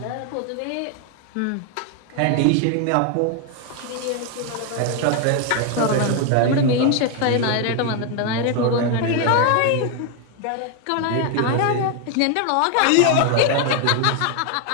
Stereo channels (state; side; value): different; both; correlation 0.01